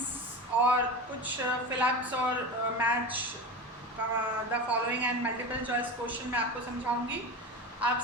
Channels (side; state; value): both; normal; correlation 0.27